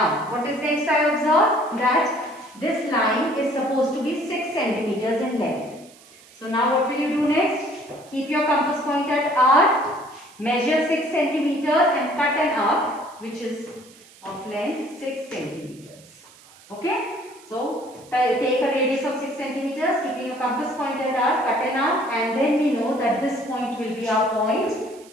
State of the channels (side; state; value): right; noise; hiss, 24 dB below the sound